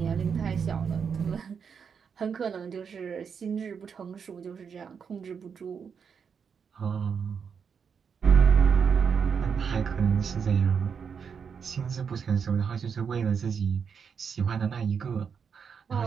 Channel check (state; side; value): quieter; left; 6.6 dB